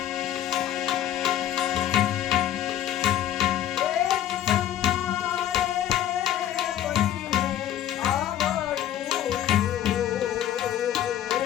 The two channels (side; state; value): right; quieter; 11.7 dB